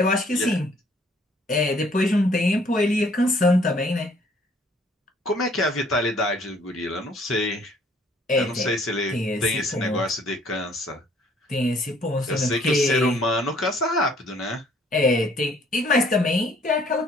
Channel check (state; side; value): normal; both; correlation 0.61